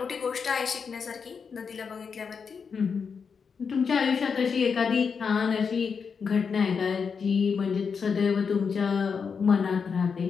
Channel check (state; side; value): quieter; right; 5.9 dB